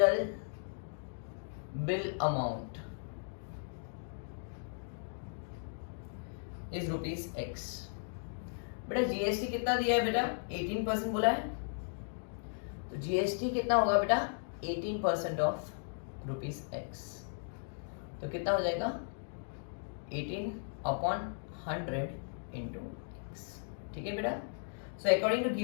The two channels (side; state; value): right; silent; digital silence